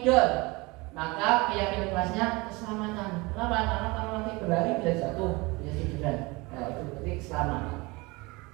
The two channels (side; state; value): left; quieter; 24.7 dB